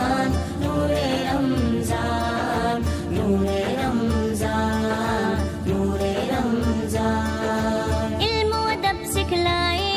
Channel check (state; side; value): identical; both; correlation 1.00